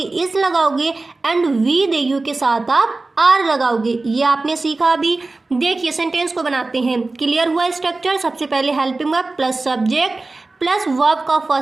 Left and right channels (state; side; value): quieter; left; 3.4 dB